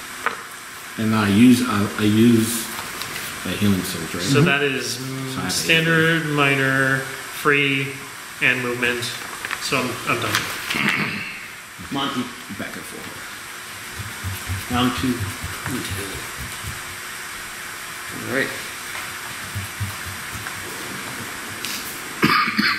And I use a healing surge, right? So that is So I have standard, minor, free, and movement. So I'm done. Monty, back and forth. round 2. Alright.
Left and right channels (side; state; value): both; identical; correlation 1.00